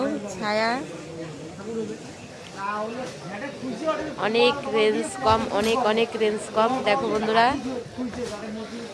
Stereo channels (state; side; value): identical; both; correlation 1.00